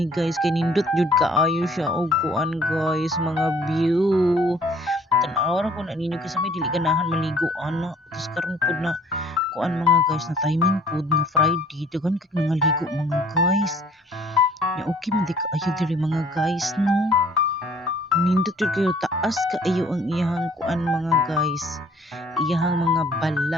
guys kay nindot jud kaayo siya og kuan guys, mga view. Tan-aw ra ko na ninyo kasi may dili ganahan maligo ana. Tapos karon pud na kuan mga guys na timing pud nga Friday, daghan kay nangaligo mga guys. Ya okay man di kaayo diri mga guys no. Nindot jud kayo taas kaayo ang iyahang kuan mga guys. Iyahang mga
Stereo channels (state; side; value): normal; both; correlation 0.55